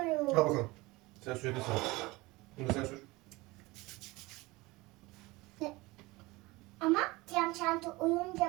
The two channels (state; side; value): quieter; left; 22.0 dB